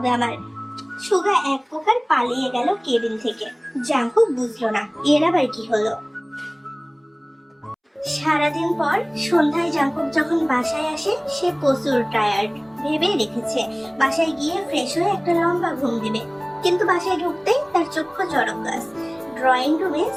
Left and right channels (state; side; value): identical; both; correlation 1.00